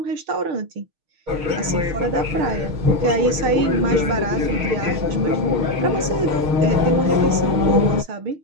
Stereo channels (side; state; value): left; late; 6.5 ms